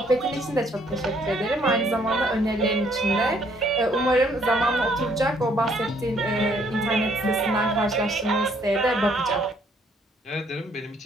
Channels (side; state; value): both; normal; correlation 0.66